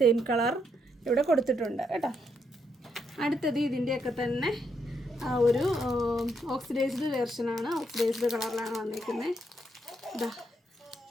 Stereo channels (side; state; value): both; normal; correlation 0.77